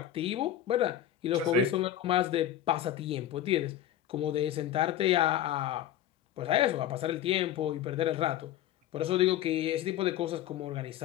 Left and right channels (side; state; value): right; quieter; 11.3 dB